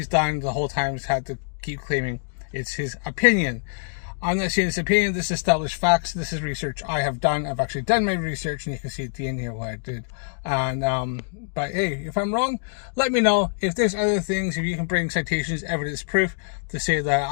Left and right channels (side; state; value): right; silent; digital silence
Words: done the whole time is had to keep claiming it's his opinion. I'm not saying it's opinion, this is established facts. This is research I have done. I've actually done my research, and you can see at the end here what I did. And but hey, if I'm wrong, let me know. If there's other things, if you can bring citations, evidence, proof to say